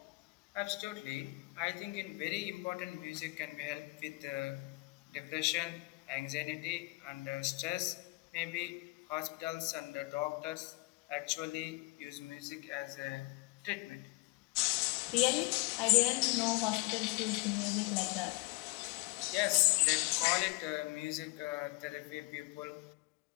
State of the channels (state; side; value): quieter; right; 26.3 dB